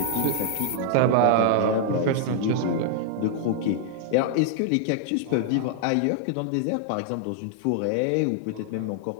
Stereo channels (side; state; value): both; different; correlation -0.01